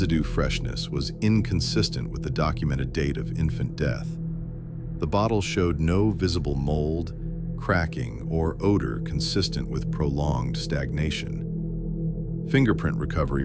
freshness was inconsistent with the documented date of infant death. The bottle showed no visible mold, cracking, or odor consistent with prolonged stagnation. Fingerprint recovery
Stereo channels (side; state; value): both; identical; correlation 1.00